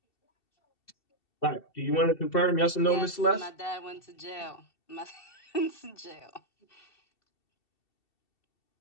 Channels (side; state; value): right; late; 2.7 ms